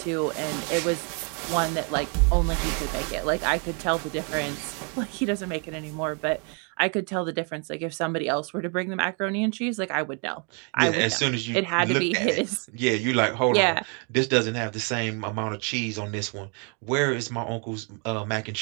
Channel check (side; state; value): left; quieter; 37.2 dB